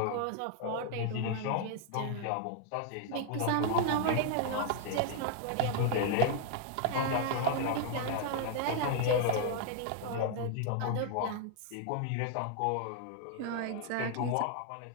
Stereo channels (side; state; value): both; different; correlation 0.00